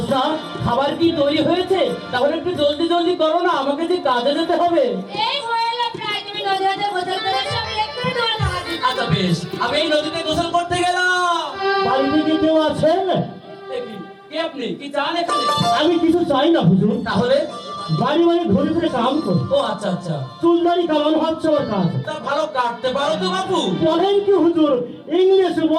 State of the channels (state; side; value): identical; both; correlation 1.00